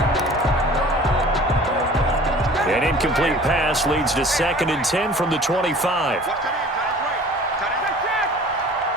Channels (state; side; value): normal; both; correlation 0.46